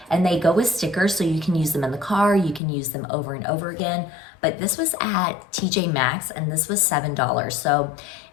and they go with stickers, so you can use them in the car, you can use them over and over again. But this was at TJ Maxx, and this was $7. So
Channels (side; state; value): right; drops out; at 2.6 s